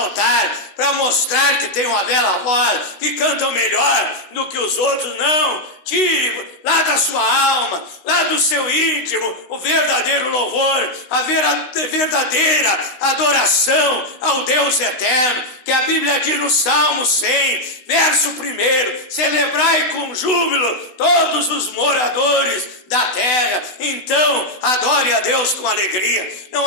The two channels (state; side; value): late; right; 16 ms